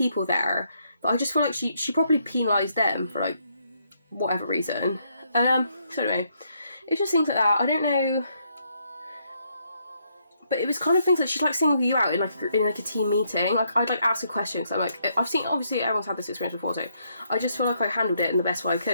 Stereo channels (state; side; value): inverted; both; correlation -0.74